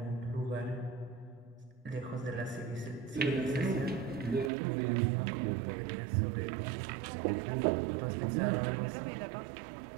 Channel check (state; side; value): drops out; left; at 4.5 s